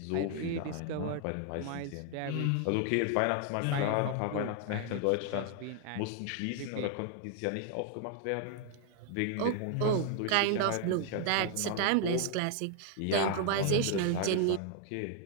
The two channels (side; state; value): both; different; correlation 0.00